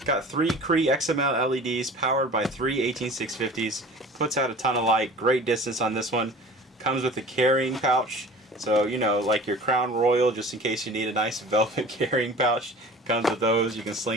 got 3 CREE XM-L LEDs powered by 3 18650s. Puts out a ton of light. Great distance on this one. Comes with a carrying pouch. So, you know, like your Crown Royal, just in case you need a nice velvet carrying pouch. Comes with those. You can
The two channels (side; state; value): both; normal; correlation 0.42